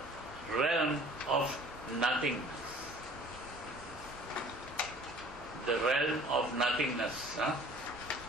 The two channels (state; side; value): normal; both; correlation 0.50